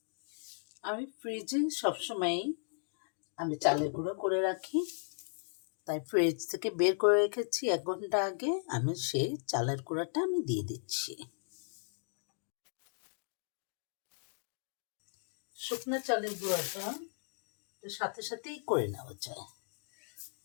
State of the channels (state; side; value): silent; right; digital silence